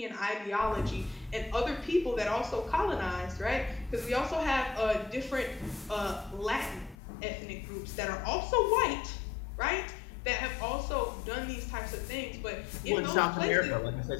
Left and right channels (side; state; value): right; drops out; at 7.0 s